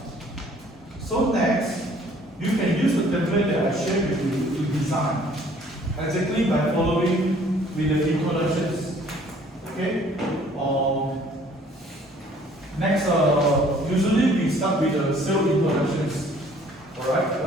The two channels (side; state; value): both; normal; correlation 0.57